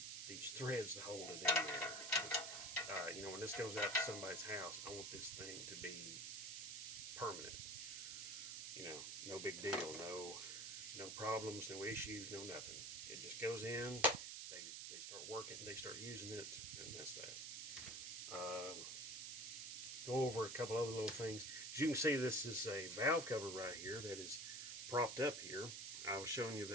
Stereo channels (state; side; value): noise; right; hiss, 6 dB below the sound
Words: these threads to hold it in there. You know, when this goes out to somebody's house, I want this thing to be permanent. You know, no big deal, no problems, no issues, no nothing. It just goes in, they start working, they start using it, and that's that. Go over a couple other little things. As you can see, this is a valve cover right here that is propped up here. I was showing you